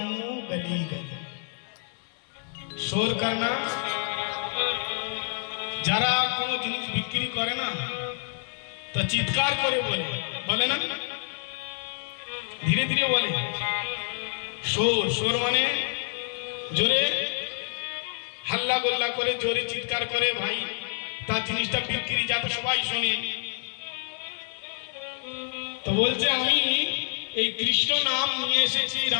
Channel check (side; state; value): right; silent; 59 dB below the other